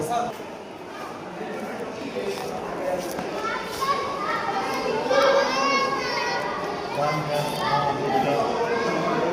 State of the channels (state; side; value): identical; both; correlation 1.00